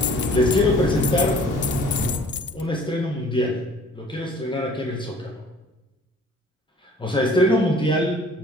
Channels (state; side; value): normal; both; correlation 0.52